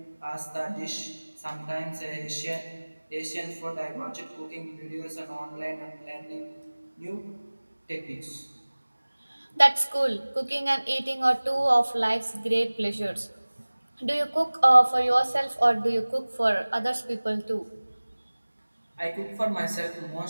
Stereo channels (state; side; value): inverted; both; correlation -1.00